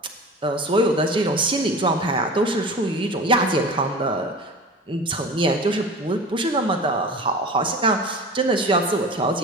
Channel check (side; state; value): both; normal; correlation 0.36